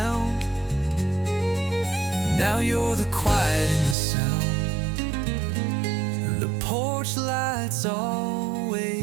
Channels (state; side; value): drops out; left; at 4.0 s